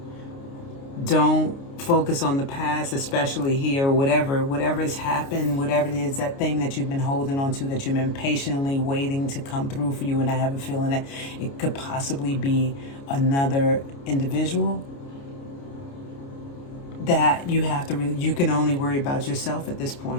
Don't focus on the past, especially here, whatever has happened, whatever it is, that thing that you've been holding on to, that you've been patiently waiting to come through for you. And I have a feeling that it could possibly be another individual that you can only worry about yourself at this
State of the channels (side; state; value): right; late; 29 ms